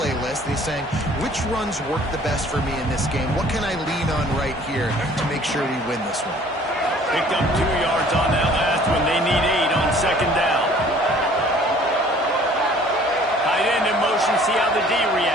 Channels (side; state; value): both; normal; correlation 0.54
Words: and he's saying, which runs work the best for me in this game? What can I lean on right here to make sure we win this one? Picked up 2 yards on that last one. They need 8 on 2nd down. Tight end in motion, see how the D